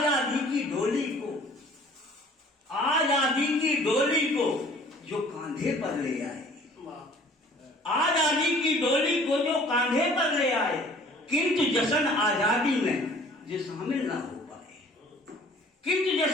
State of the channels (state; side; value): normal; both; correlation 0.52